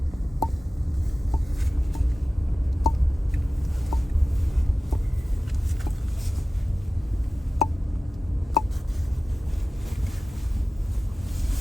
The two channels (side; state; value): both; normal; correlation 0.95